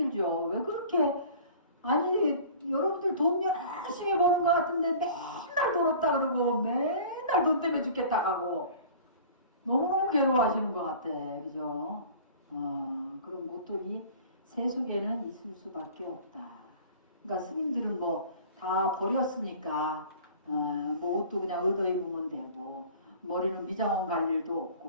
왜 그렇게 아니 여러분들 돈 열심히 버는 것 같은데 맨날 돈 없다 그러고 맨날 돈 때문에 죽겠다 하고 너무너무 괴로워하시는 것 같아. 그죠? 그런 고통이 세속에는 있을 수밖에 없다. 그러니까 스님들은 뭐 다 버렸으니까 뭐 옷도 그냥 얻어 입으면 되고 머리는 미장원 갈 일도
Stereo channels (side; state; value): both; inverted; correlation -0.44